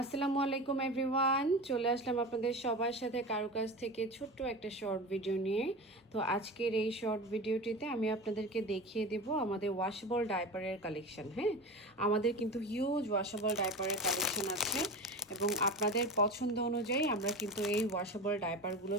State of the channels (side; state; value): both; normal; correlation 0.28